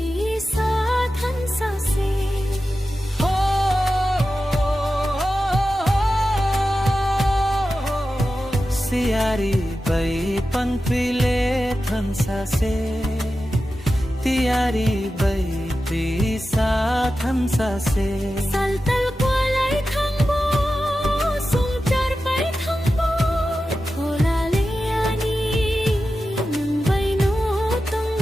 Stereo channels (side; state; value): both; normal; correlation 0.92